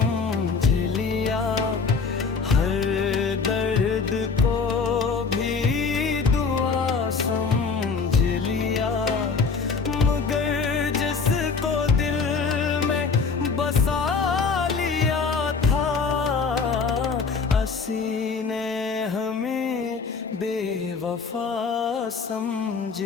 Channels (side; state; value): right; quieter; 5.0 dB